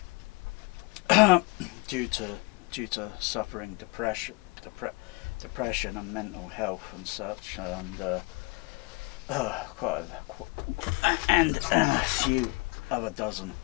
due to suffering depression and mental health and such, and a few other dozen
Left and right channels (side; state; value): right; quieter; 27.1 dB